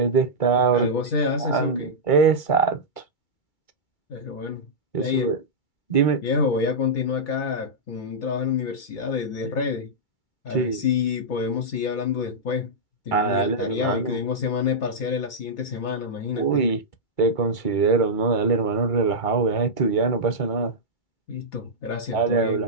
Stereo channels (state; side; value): late; right; 2.3 ms